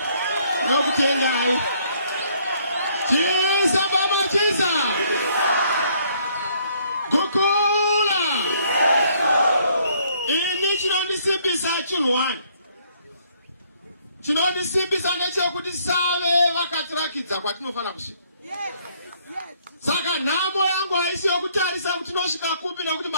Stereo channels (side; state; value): both; inverted; correlation -0.65